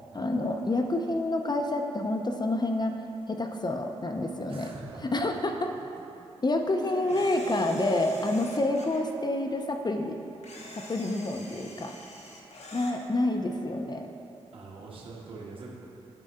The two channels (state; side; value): normal; both; correlation 0.76